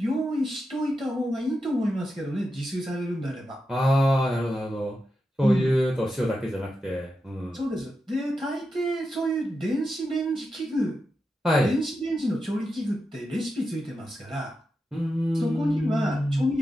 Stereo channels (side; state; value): both; normal; correlation 0.88